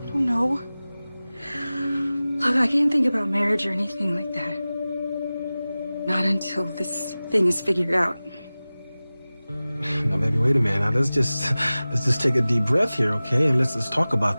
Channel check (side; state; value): both; inverted; correlation -0.97